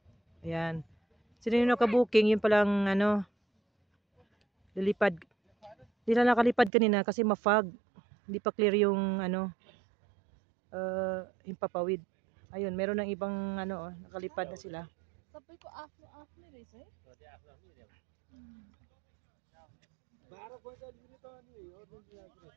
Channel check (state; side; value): drops out; left; at 6.7 s